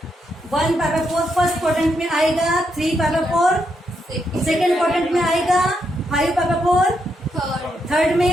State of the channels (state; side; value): normal; both; correlation 0.80